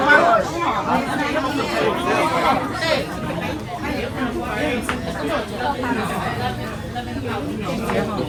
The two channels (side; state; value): both; identical; correlation 1.00